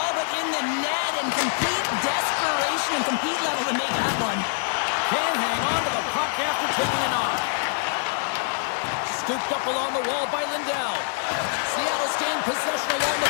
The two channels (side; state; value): right; silent; digital silence